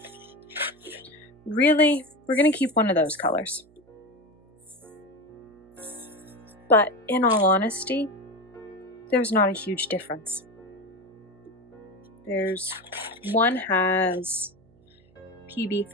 really, we're gonna keep one of those colors. But in all honesty, there's not a huge difference. One has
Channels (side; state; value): right; noise; hum, 29 dB below the sound